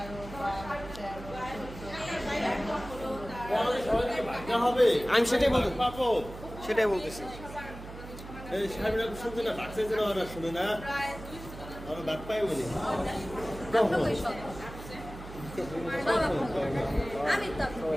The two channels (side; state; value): right; noise; hum, 13 dB below the sound